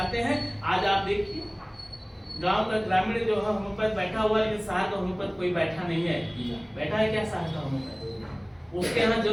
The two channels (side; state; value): both; identical; correlation 1.00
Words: हैं। आज आप देखिए गांव का ग्रामीण जो है होम्योपैथ बैठा हुआ है, लेकिन शहर का होम्योपैथ कोई बैठा नहीं है। बैठा है क्या शहर का होम्योपैथ? उसके यहाँ